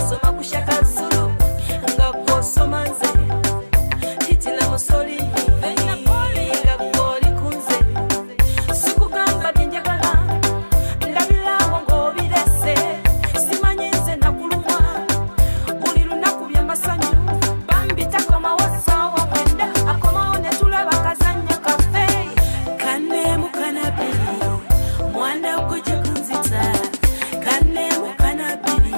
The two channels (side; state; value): both; inverted; correlation -1.00